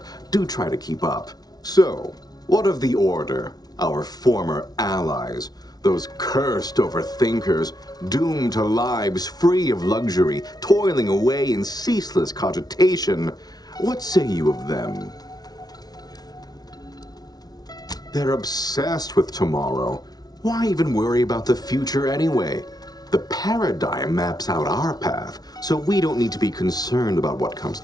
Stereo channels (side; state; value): right; late; 0.19 ms